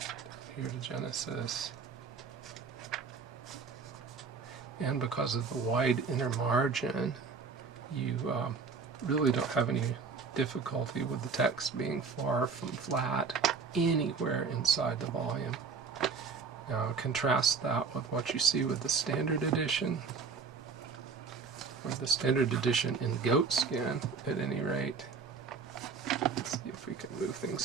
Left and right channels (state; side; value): quieter; left; 5.1 dB